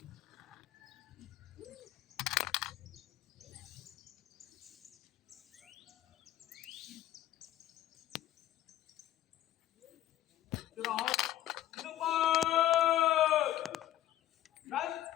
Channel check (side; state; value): right; quieter; 13.2 dB